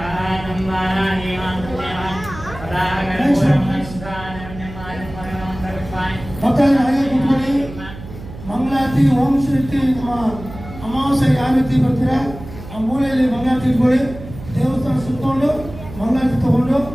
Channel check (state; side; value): noise; right; hum, 13 dB below the sound